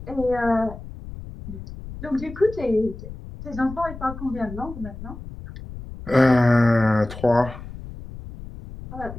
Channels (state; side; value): noise; left; rumble, 13 dB below the sound